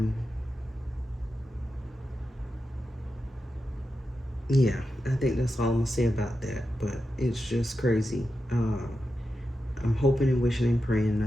Yeah, I think that's all I'm gonna say about that. But it's just crazy. I'm hoping and wishing and praying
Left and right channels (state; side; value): normal; both; correlation 0.90